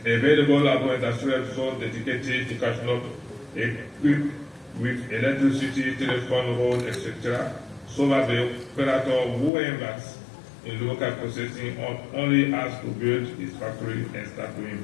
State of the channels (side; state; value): right; drops out; at 9.5 s